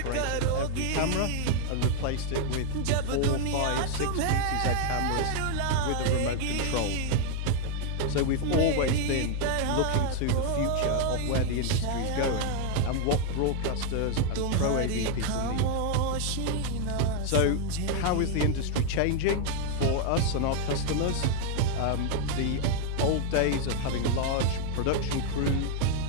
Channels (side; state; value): both; different; correlation 0.00